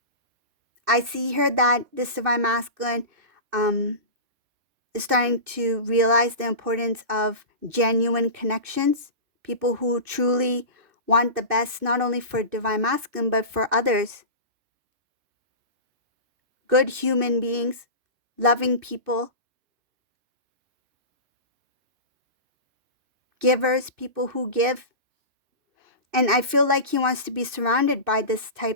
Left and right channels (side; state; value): left; late; 2.6 ms